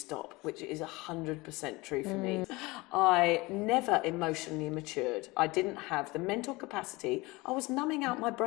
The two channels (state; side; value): quieter; right; 22.8 dB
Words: which is 100% true for me. I never emotionally matured. I didn't have the mental capacity. I was numbing out my